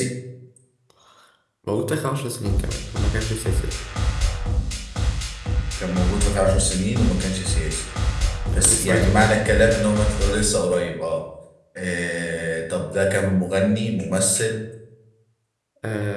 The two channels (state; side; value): identical; both; correlation 1.00